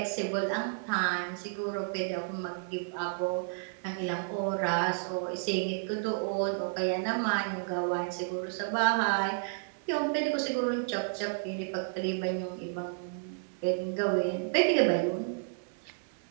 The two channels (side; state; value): left; silent; 57 dB below the other